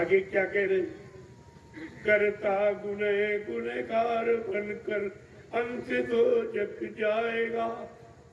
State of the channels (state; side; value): identical; both; correlation 1.00